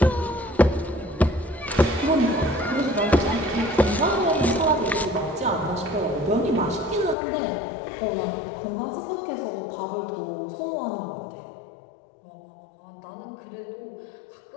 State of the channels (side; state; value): right; drops out; at 7.2 s